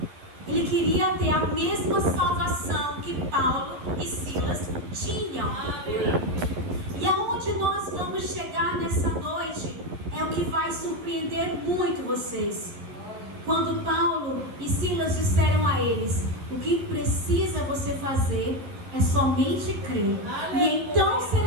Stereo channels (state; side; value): late; left; 11 ms